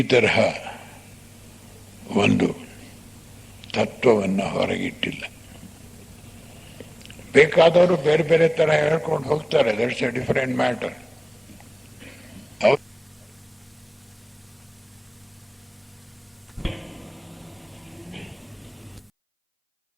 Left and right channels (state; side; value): identical; both; correlation 1.00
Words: ತರಹ ಒಂದು ತತ್ವವನ್ನು ಹೊರಗಿಟ್ಟಿಲ್ಲ. ಬೇಕಾದವರು ಬೇರೆ ಬೇರೆ ತರ ಹೇಳ್ಕೊಂಡು ಹೋಗ್ತಾರೆ. That's A different matter.